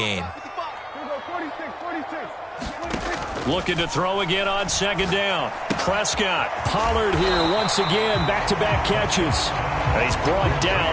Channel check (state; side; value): identical; both; correlation 1.00